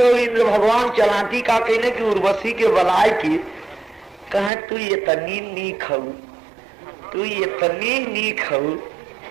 इंद्र भगवान चलाती का कहने की उर्वशी के बलाय की कहे तू ये तनी नी खाऊ, तू ये तनी नी खाऊ।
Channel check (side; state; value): left; drops out; at 4.5 s